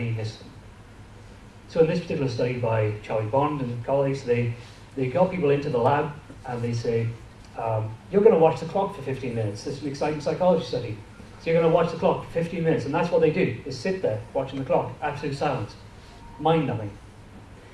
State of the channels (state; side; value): identical; both; correlation 1.00